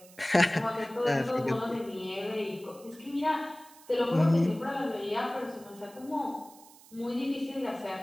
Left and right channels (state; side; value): noise; right; hiss, 23 dB below the sound